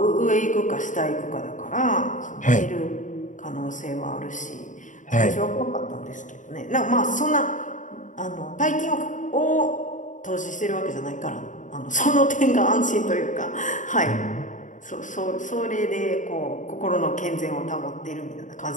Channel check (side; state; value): right; late; 0.37 ms